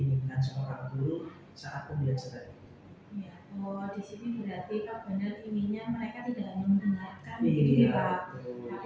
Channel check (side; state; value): both; identical; correlation 1.00